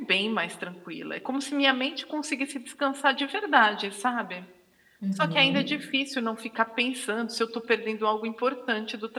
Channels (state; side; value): identical; both; correlation 1.00